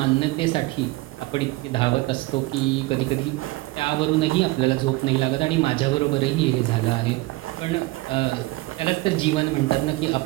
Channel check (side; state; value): left; quieter; 21.0 dB